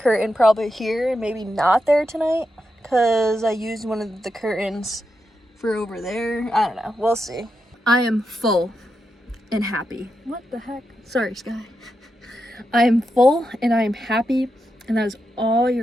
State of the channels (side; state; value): both; normal; correlation 0.86